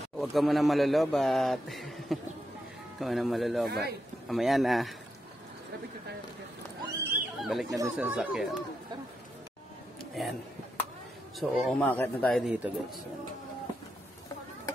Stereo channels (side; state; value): both; normal; correlation 0.84